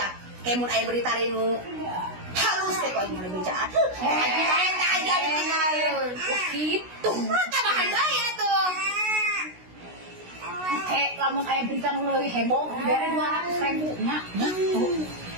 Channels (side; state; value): left; late; 16 ms